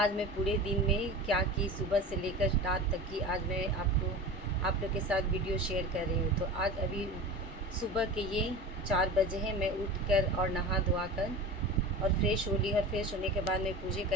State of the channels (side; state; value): both; normal; correlation 0.32